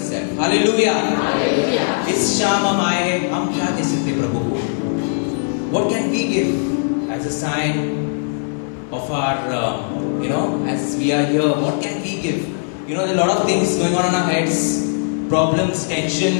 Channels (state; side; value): silent; right; 66 dB below the other